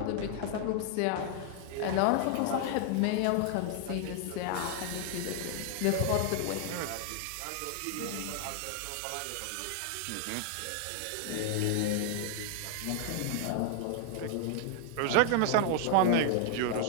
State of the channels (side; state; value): both; different; correlation 0.00